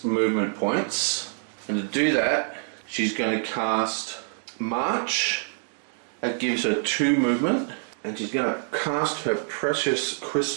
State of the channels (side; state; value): left; silent; digital silence